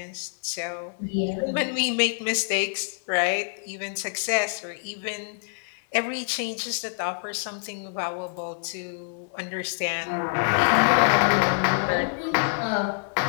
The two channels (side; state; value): right; silent; 61 dB below the other